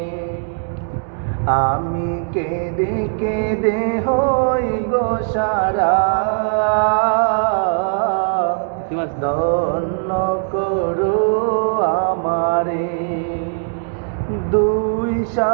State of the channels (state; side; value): silent; left; 66 dB below the other